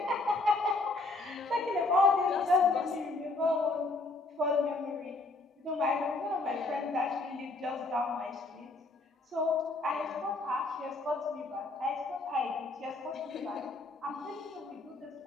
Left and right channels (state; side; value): quieter; right; 3.2 dB